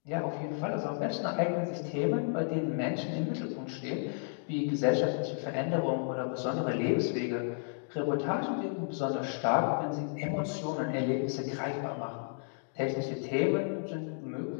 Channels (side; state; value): right; silent; digital silence